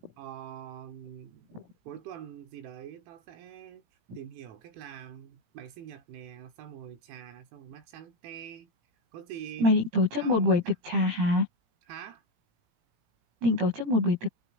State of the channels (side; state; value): left; late; 18 ms